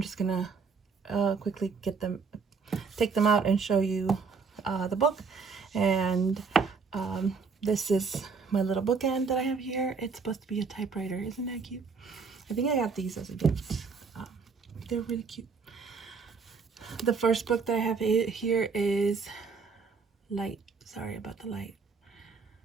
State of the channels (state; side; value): quieter; left; 5.1 dB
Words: just gonna quickly take them out and show you the book. And this is my little bookend that I have here. It's supposed to be a typewriter. Isn't that cute? I think I got these as a gift. They're really cute. The first book that I have here is Light. Sorry about the light.